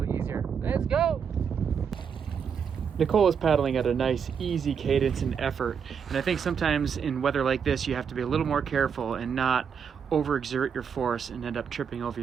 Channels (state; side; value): quieter; left; 7.0 dB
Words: easier. Let's go! Nicole is paddling at a nice, easy cadence and effort. And I think sometimes in weather like this, you have to be a little more careful and not overexert your force and end up tripping over